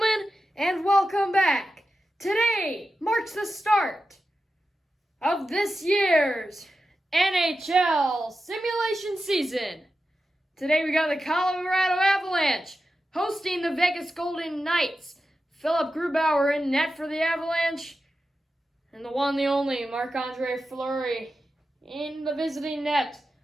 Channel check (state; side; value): normal; both; correlation 0.91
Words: and welcome back. Today marks the start of this year's NHL simulation season. Today we got the Colorado Avalanche hosting the Vegas Golden Knights. Philip Grubauer in net for the Avalanche, and the one, the only, Marc-Andre Fleury in the visiting net